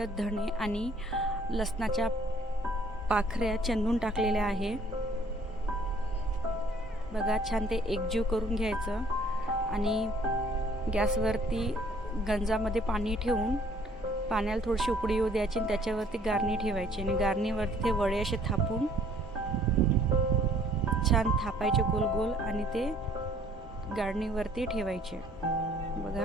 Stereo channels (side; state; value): both; normal; correlation 0.59